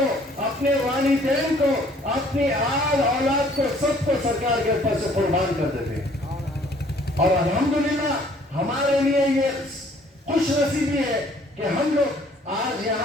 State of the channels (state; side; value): normal; both; correlation 0.59